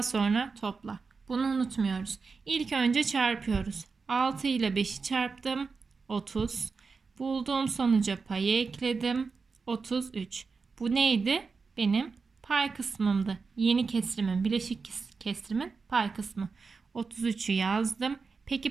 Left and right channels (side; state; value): left; quieter; 4.7 dB